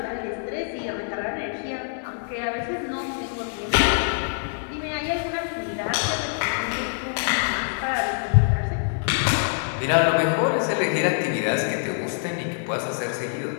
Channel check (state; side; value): silent; right; 62 dB below the other